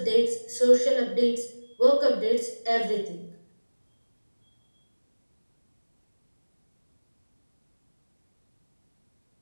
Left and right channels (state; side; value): inverted; both; correlation -1.00